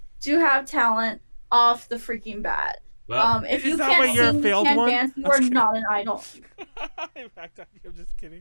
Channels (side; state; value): both; inverted; correlation -1.00